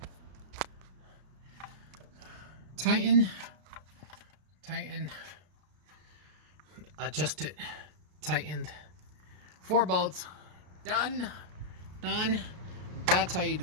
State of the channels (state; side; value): late; left; 33 ms